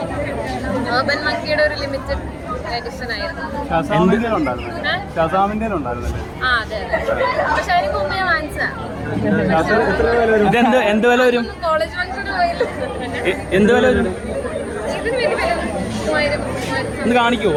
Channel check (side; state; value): both; identical; correlation 1.00